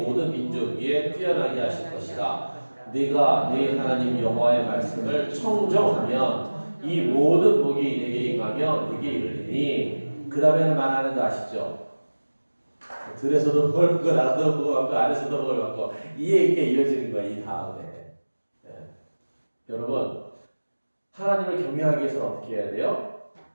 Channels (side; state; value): both; inverted; correlation -1.00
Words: 민족 위에 뛰어나게 하실 것이라. 네가 네 하나님 여호와의 말씀을 청정하면 이 모든 복이 내게 임하며 내게 이르리니. 그 다음에는 말하는 거 아시죠? 들에서도 복을 받고 나도 복을 받고 안에서도 복을 받고 이게 이어지는 거야. 이 다음에 여러분 하나님을 경외하기 위해서는 어떻게 해야 돼요?